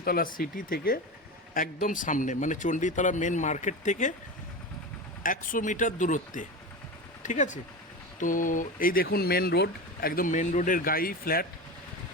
সিটি থেকে একদম সামনে, মানে চণ্ডীতলা মেন মার্কেট থেকে 100 মিটার দূরত্বে, ঠিক আছে। তো এই দেখুন মেন রোড, একদম মেন রোডের গায়েই ফ্ল্যাট।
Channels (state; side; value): normal; both; correlation 0.24